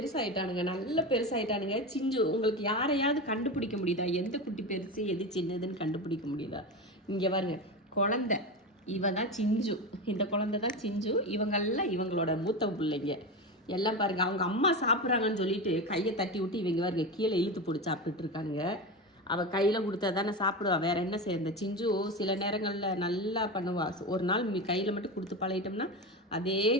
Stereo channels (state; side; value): normal; both; correlation 0.21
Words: நல்ல பெருசாயிட்டானுங்க. சிஞ்சு உங்களுக்கு யாரையாவது கண்டுபிடிக்க முடியுதா? எந்த குட்டி பெருசு எது சின்னதுன்னு கண்டுபிடிக்க முடியுதா? இங்கே பாருங்க, குழந்தை இவ தான் சிஞ்சு. இந்த குழந்தை தான் சிஞ்சு. இவங்கெல்லாம் இவங்களோட மூத்த பிள்ளைங்க எல்லாம் பாருங்க. அவங்க அம்மா சாப்பிட்றாங்கன்னு சொல்லிட்டு கையை தட்டி விட்டு இவங்க பாருங்க கீழே இழுத்து போட்டு சாப்பிட்டுட்டு இருக்கானுங்க. அவள் கையில் கொடுத்தா தானே சாப்பிடுவா, வேற என்ன செய்ய. சிஞ்சு சில நேரங்களில் நல்லா பண்ணுவா. ஒரு நாள் கையில் மட்டும் கொடுத்து பழகிட்டோம்னா அதே